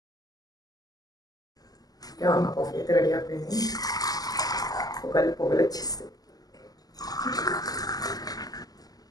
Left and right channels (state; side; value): late; right; 0.18 ms